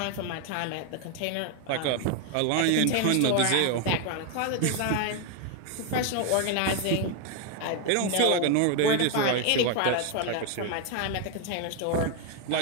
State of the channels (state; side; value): different; both; correlation 0.01